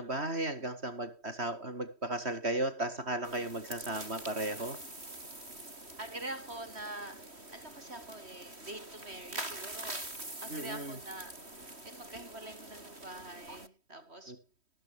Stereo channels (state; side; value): late; left; 3.1 ms